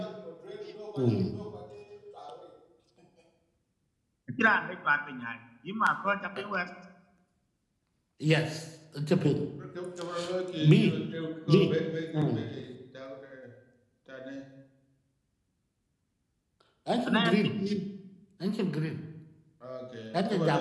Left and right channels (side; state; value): both; identical; correlation 1.00